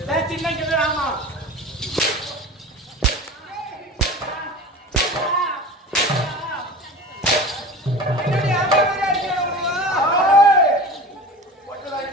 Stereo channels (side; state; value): both; normal; correlation 0.35